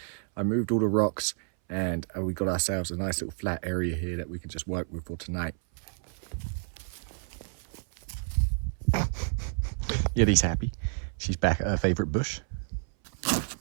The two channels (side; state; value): left; silent; 58 dB below the other